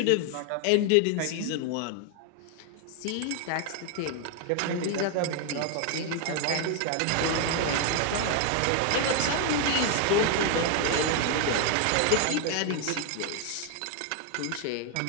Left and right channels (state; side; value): different; both; correlation 0.00